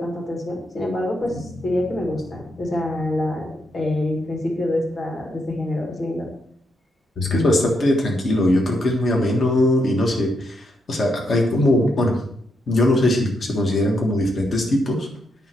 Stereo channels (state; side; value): normal; both; correlation 0.80